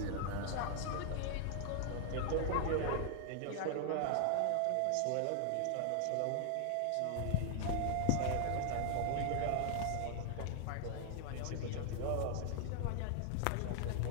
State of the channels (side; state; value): both; different; correlation 0.00